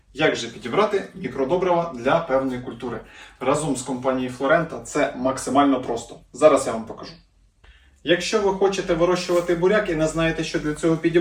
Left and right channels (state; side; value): identical; both; correlation 1.00